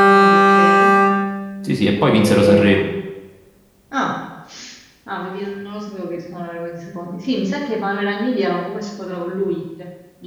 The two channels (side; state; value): both; identical; correlation 1.00